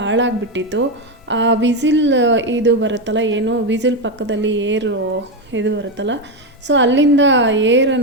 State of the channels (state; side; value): normal; both; correlation 0.10